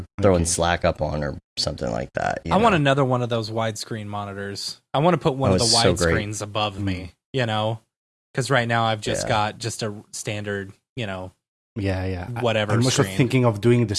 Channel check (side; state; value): both; identical; correlation 1.00